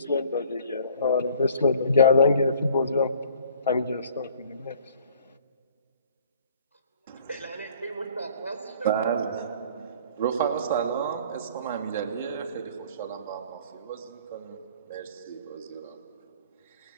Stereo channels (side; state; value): both; inverted; correlation -0.54